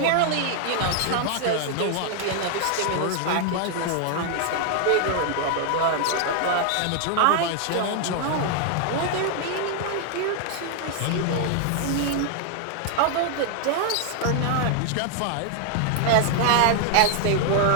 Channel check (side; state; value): both; different; correlation 0.00